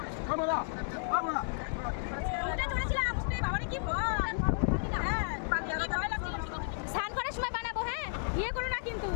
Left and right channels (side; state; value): right; silent; digital silence